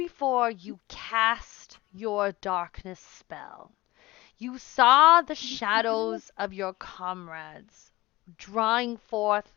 you cast your darkness spell, you saw the shadows of your comrades drawing forth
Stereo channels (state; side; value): quieter; right; 19.5 dB